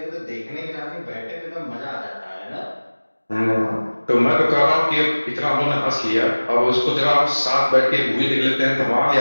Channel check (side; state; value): both; inverted; correlation -1.00